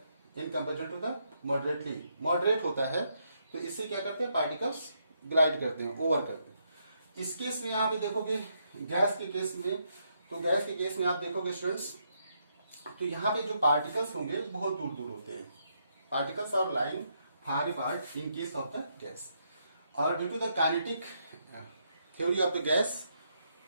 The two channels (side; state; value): both; inverted; correlation -0.77